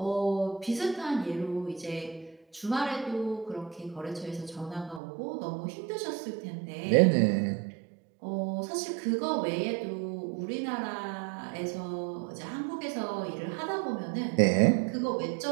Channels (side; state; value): left; drops out; at 5.0 s